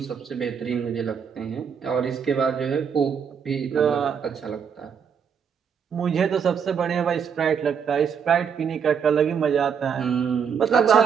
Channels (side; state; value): left; quieter; 7.0 dB